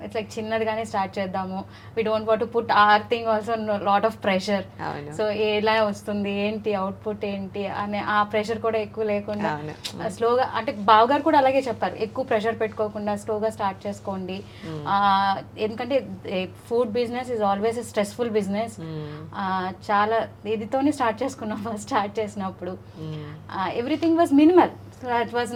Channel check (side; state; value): both; identical; correlation 1.00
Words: It's like చిన్నదిగానే start చేద్దాము, we don't want to put our thing also lot of pressure. So ఎలా వస్తుంది ఏంటి అవుట్పుట్ ఏంటి అనే ఆ ప్రెషర్ కూడా ఎక్కువ లేకుండా స్లోగా, అంటే బావగారు కూడా అలాగే చెప్పారు, ఎక్కువ ప్రెషర్ పెట్టుకోకుండా స్లోగా స్టార్ట్ చేసుకోండి. ఎందుకంటే food business is always a stressful business. చాలా ఇదితోనే స్టార్ట్ చేసుకున్నాం ఫస్ట్ స్టార్ట్ చేసినప్పుడు. Everything was minimal. So it was